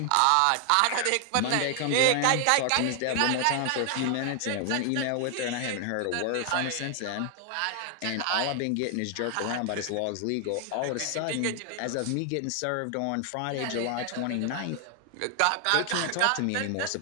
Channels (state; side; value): different; both; correlation 0.00